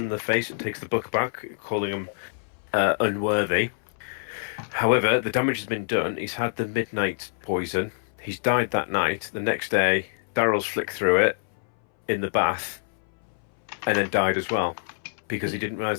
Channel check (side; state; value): right; silent; 61 dB below the other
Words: in the face and takes the book back, calling him unworthy. However, the damage has been done. He's had the midnight poison. He's died that night. The next day, Daryl's flicked through it in the bath and then died as well because he didn't